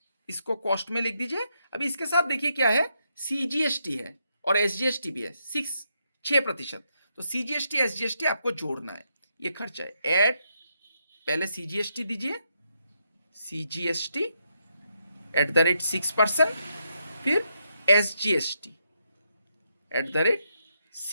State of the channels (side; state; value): both; inverted; correlation -0.80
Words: इसको कॉस्ट में लिख दीजिए। अभी इसके साथ देखिए क्या है, सीजीएसटी है और एसजीएसटी भी है, 6%। तो सीजीएसटी एसजीएसटी आपको जोड़ना है, ये खर्चा है। ऐड, पहले सीजीएसटी दीजिए, सीजीएसटी एट द रेट 6%, फिर एसजीएसटी एट द रेट